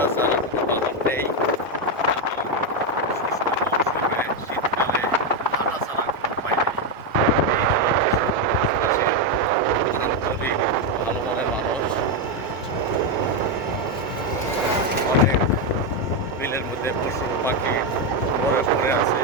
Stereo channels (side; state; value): both; normal; correlation 0.06